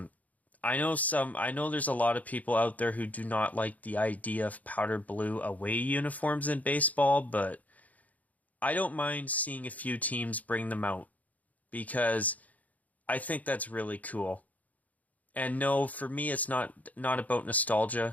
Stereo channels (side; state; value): right; late; 0.075 ms